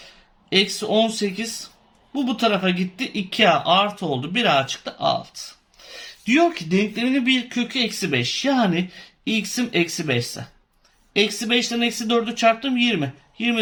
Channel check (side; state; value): both; identical; correlation 1.00